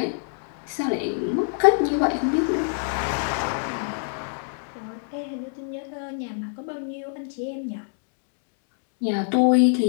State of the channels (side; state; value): right; silent; 61 dB below the other